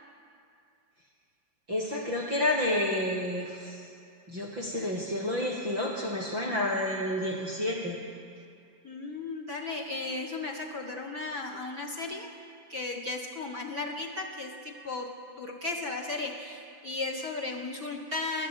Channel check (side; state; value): left; late; 5.9 ms